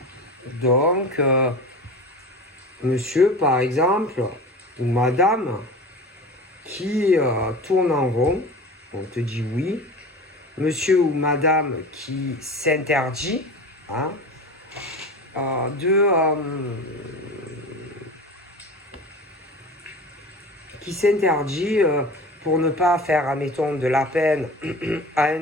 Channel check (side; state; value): both; normal; correlation 0.34